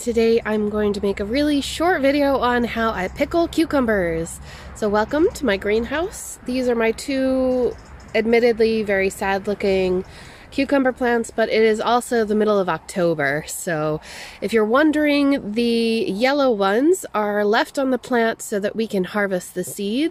I'm going to make a really short video on how I pickle cucumbers. So welcome to my greenhouse. These are my two admittedly very sad looking cucumber plants, but it is also the middle of October. So if you're wondering, the yellow ones are left on the plant so that we can harvest the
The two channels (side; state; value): both; identical; correlation 1.00